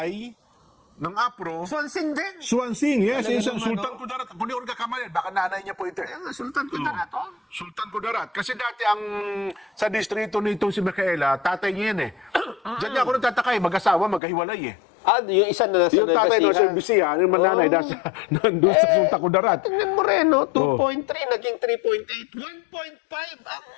ng APRO, Sonsing din. Swansing, yes, Talaga isang naman, Sultan Kudarat. Kung di ko kamalan, baka nanay niya po ito. Kaya nga, Sultan Kudarat. Sultan Kudarat. Kasi dati sa distrito nitong si Micaela, tatay niya yan eh. Diyan niya ako nagtataka eh, mag-asawa, magkahiwalay eh. Yung isa na nasa Yung tatay no, sa Bisiya, yung mananay, nandun sa Sultan Kudarat. Tingnan mo rin, no? 2.3, naging 3.8. 1.5 ang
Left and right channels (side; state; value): right; drops out; at 14.2 s